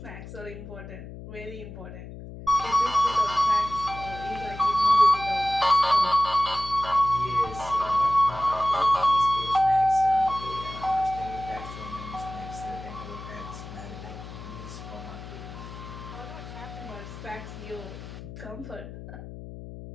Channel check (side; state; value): left; noise; hum, 12 dB below the sound